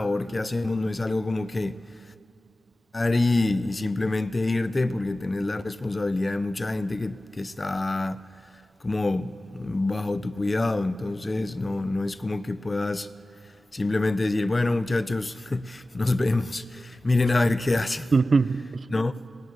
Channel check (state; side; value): normal; both; correlation 0.96